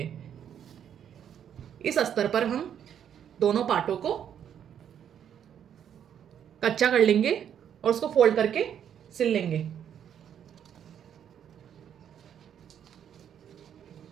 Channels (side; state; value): left; quieter; 9.1 dB